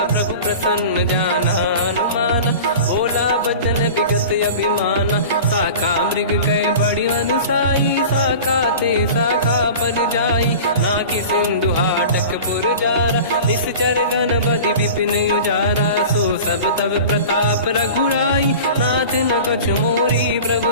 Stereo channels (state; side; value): inverted; both; correlation -0.37